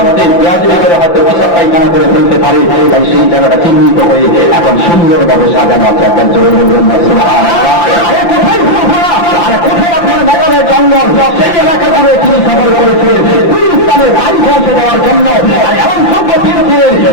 বেয়াদবি করে হয়তো পেশাব পায়খানা করে ফেলতে পারে, তাই সেই জায়গাটা চিহ্নিত হয়ে এখন সুন্দরভাবে সাজানো আছে। একজন জোরে বলবেন না সুবহানাল্লাহ। আরে কোথায় ফুরফুরা, আরে কোথায় আপনার মেঘালয়ের জঙ্গল, সেই এলাকা করে তিনি সফর করেছিলেন ইসলামের বাড়ি পৌঁছে দেওয়ার জন্য। আর এমন যোগ্য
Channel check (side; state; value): right; late; 5.8 ms